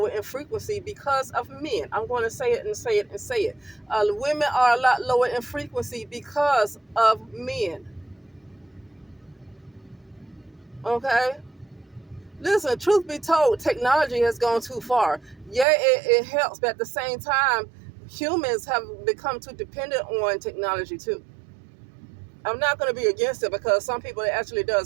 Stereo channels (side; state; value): left; drops out; at 15.7 s